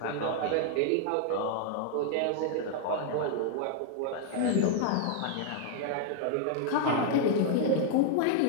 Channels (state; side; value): different; both; correlation 0.00